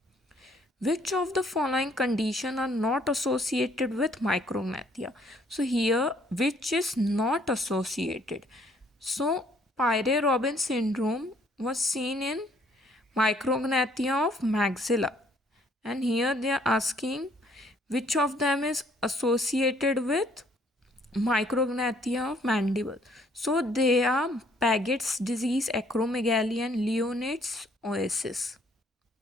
Which of the following conditions are not associated with micrognathia? So here, which is not associated? So Pierre-Robin syndrome was seen in micrognathia of maxilla, and here they are asking which of them is associated with micrognathia of mandible. So they are Paget's disease, acromegaly, and Leonard's oasis.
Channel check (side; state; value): both; normal; correlation 0.64